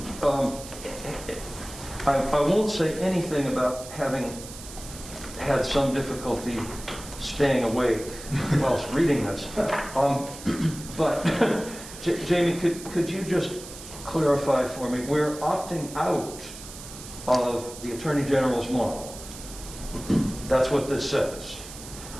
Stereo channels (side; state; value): right; noise; hiss, 14 dB below the sound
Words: I won't say anything about having had some difficulty staying awake whilst reading this. But, Jamie, could you just clarify for me, we're opting out of the Attorney General's model. That's what this says.